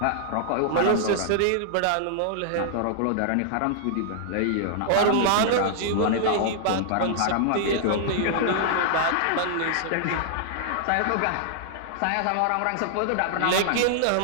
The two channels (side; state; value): both; different; correlation -0.01